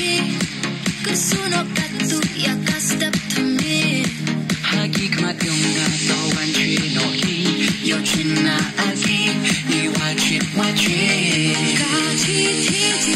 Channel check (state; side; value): identical; both; correlation 1.00